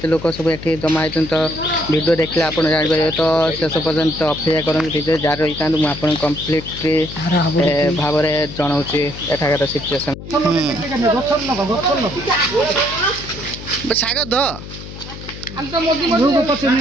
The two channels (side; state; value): left; noise; hum, 12 dB below the sound